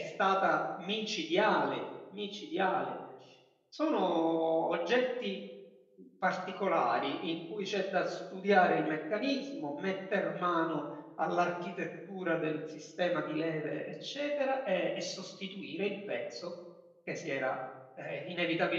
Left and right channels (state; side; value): identical; both; correlation 1.00